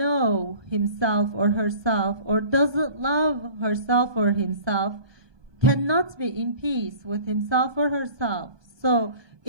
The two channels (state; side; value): late; left; 1.2 ms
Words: himself or herself or doesn't love herself or himself cannot be in peace with himself or herself. So